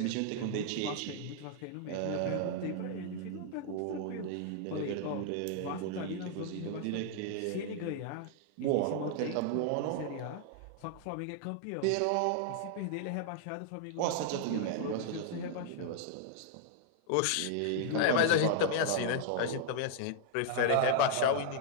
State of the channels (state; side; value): different; both; correlation 0.00